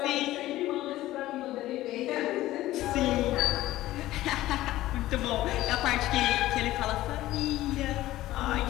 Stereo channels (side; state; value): right; quieter; 15.7 dB